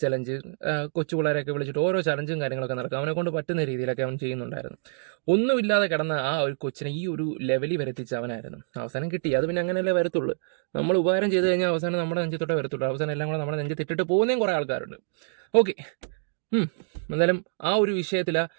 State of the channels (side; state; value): left; silent; digital silence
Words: ചലഞ്ച്, കൊച്ചു പിള്ളേരെയൊക്കെ വിളിച്ചിട്ട് ഓരോ ചലഞ്ചും കാര്യങ്ങളൊക്കെ നടക്കും. അവനെ കൊണ്ട് പറ്റുന്ന രീതിയിലൊക്കെ അവൻ ചെയ്യുന്നുണ്ടായിരുന്നു. ഒന്നുമില്ലാതെ കിടന്ന ആ ഒരു കൊച്ചിനെ ഈ ഒരു ലെവലിൽ വരെത്തിച്ച അവനായിരുന്നു. അവസാനം കിട്ടി. അത് പിന്നെ അങ്ങനെയല്ലേ വരത്തുള്ളൂ. നമ്മൾ ഉപകാരം ചെയ്ത് കഴിഞ്ഞാൽ അവസാനം നമ്മുടെ നെഞ്ചത്തോടെ വരത്തുള്ളൂ. അവസാനം എല്ലാം കൂടെ നമ്മുടെ നെഞ്ചത്തിട്ടിട്ട് പോകുന്നതും കുറേ ആൾക്കാരുണ്ട്. ഓക്കെ, എന്തായാലും ആ ഒരു വിഷയത്തിൽ